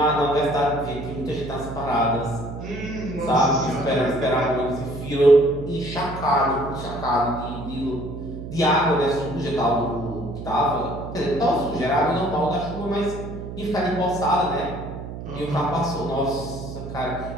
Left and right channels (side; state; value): right; noise; hum, 9 dB below the sound